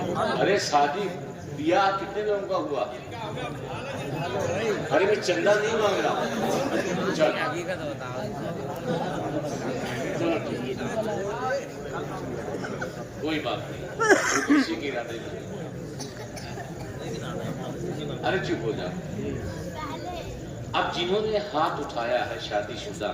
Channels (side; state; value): both; identical; correlation 1.00